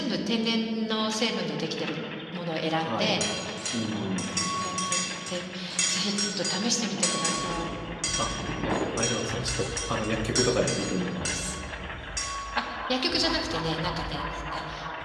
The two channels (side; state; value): both; identical; correlation 1.00